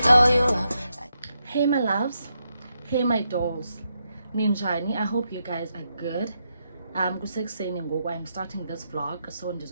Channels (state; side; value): inverted; both; correlation -0.83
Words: know you. Hey my loves, hey my dolls, ninjani. I hope you guys are good. Kusekuseni ngoku I'm starting this vlog, so